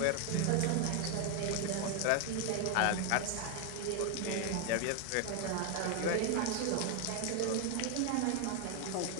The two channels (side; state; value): both; different; correlation 0.01